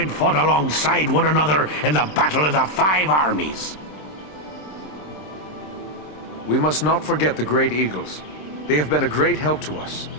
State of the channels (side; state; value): right; late; 26 ms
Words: fought alongside one another in the Battle of the Five Armies. We must not forget the Great Eagles. They have been a great help to us,